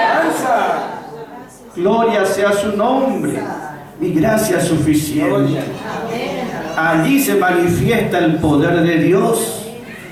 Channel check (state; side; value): identical; both; correlation 1.00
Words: Gloria sea su nombre. Mi gracia es suficiente. Allí se manifiesta el poder de Dios.